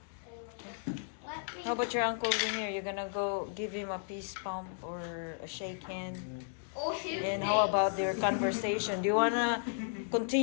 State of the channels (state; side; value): silent; right; digital silence